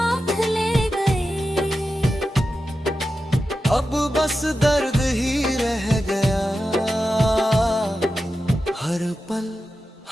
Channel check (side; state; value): both; normal; correlation 0.91